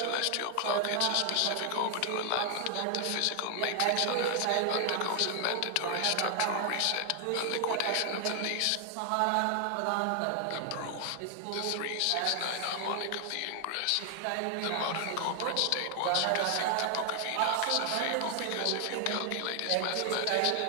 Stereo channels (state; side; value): different; both; correlation 0.00